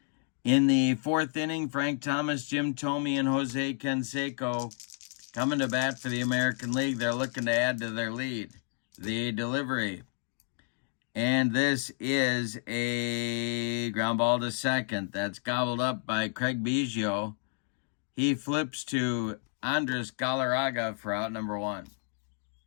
In the 4th inning, Frank Thomas, Jim Thome, and Jose Canseco coming to bat for the American League. They're looking to add to their lead. The delivery. And this is a ground ball to second. That's gobbled up by Craig Biggio. He flips to Andres Galarraga for out number 1.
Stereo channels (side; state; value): right; silent; 57 dB below the other